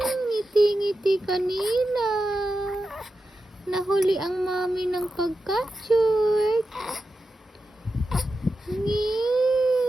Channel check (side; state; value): both; normal; correlation 0.90